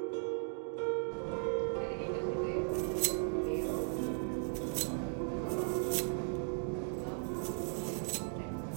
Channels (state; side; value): silent; left; 53 dB below the other